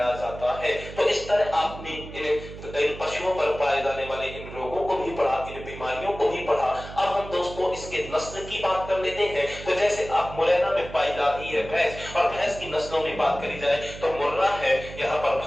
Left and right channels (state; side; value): noise; right; hum, 13 dB below the sound